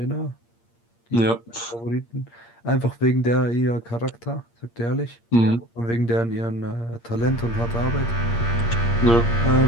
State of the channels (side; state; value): right; late; 8.6 ms